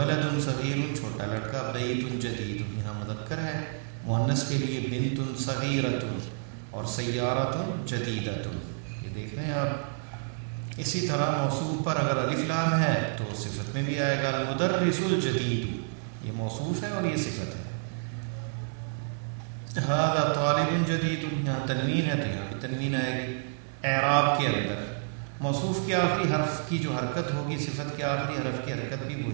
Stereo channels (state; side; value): silent; left; 58 dB below the other